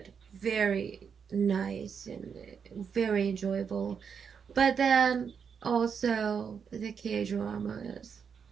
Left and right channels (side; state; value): left; quieter; 6.7 dB